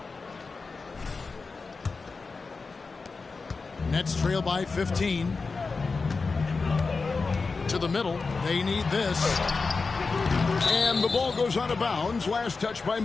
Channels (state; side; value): quieter; right; 4.3 dB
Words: Nets trail by 15. To the middle. They need this. And the ball goes out of bounds. Last touch by